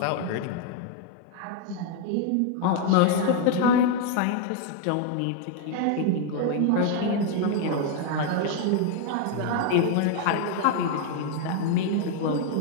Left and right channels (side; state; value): both; different; correlation 0.00